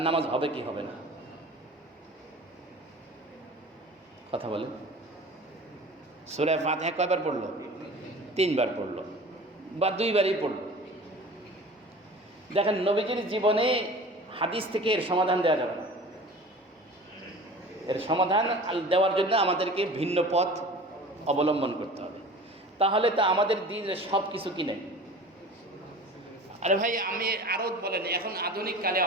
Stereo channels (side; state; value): both; normal; correlation 0.40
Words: নামাজ হবে কি হবে না? কথা বলেন। সূরা ফাতিহা কয়বার পড়লো? 3 বার পড়লো বা 2 বারই পড়লো। দেখেন নবীজির জীবনে হাদিস থেকে এর সমাধান দেওয়া যাবে না। এর সমাধান দেওয়ার জন্য আমাদেরকে ভিন্ন পথ অবলম্বন করতে হবে। তাহলে তা আমাদের দিনের সব কিছু কি নেই আরে ভাই আমি আরও বলেন, এখন আধুনিক কালে